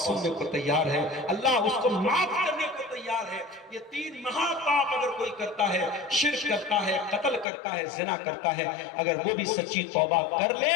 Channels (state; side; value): drops out; right; at 7.5 s